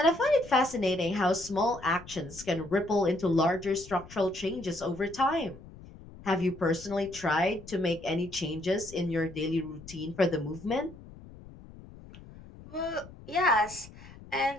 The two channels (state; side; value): noise; left; rumble, 18 dB below the sound